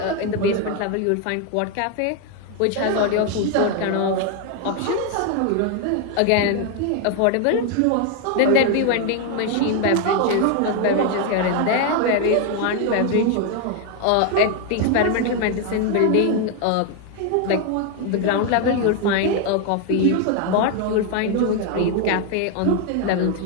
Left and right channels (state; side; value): different; both; correlation 0.01